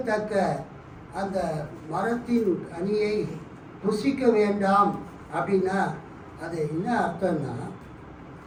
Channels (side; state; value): both; identical; correlation 1.00